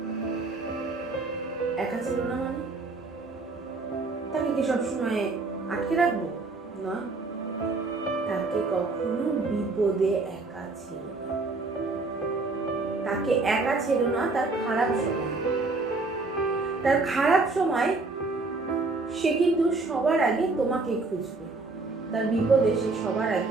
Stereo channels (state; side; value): quieter; left; 3.6 dB